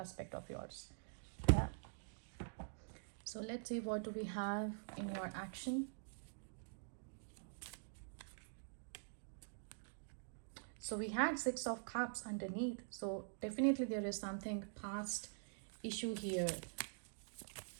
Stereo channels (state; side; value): silent; left; digital silence